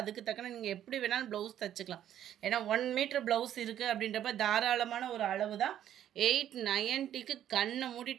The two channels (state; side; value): quieter; left; 11.0 dB